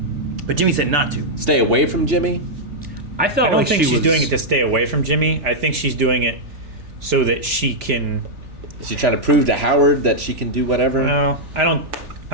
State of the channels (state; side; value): late; left; 3.4 ms